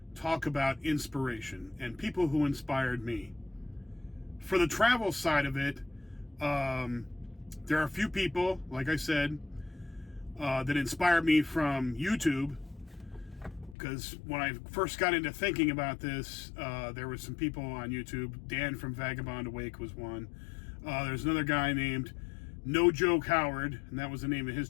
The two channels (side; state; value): right; drops out; at 13.8 s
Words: talk about inspiration and people who inspired me. For the travel side of it, there are a few people, like I said, that inspired me from YouTube. Because when I first got into thinking about this, there were some people on YouTube. Dan from Vagabond Awake was one. There's another guy named No Joke Howard, and that was the name of his